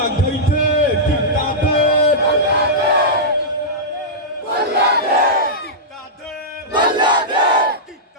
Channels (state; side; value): normal; both; correlation -0.12